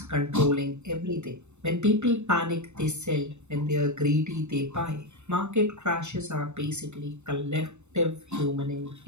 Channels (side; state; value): left; late; 0.82 ms